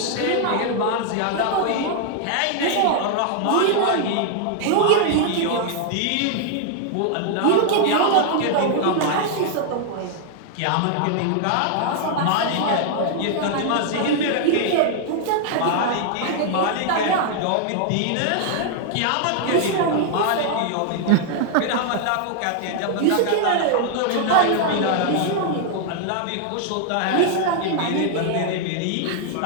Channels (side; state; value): both; different; correlation 0.00